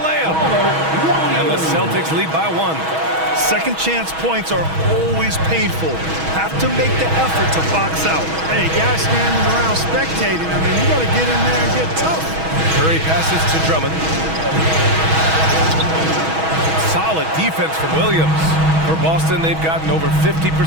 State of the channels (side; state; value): left; late; 6.2 ms